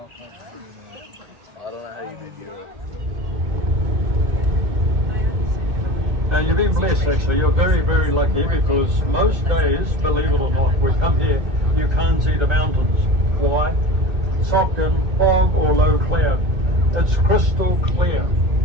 You've been blessed actually, you're very, very lucky because most days, believe it or not, we come here, you can't see the mountains. Why? Sock and fog or low cloud. It's crystal clear.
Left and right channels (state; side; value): late; left; 2.2 ms